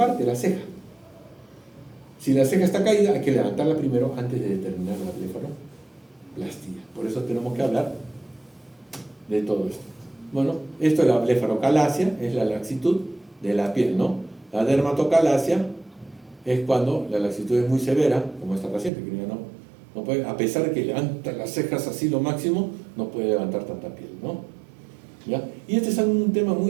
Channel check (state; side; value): drops out; left; at 18.9 s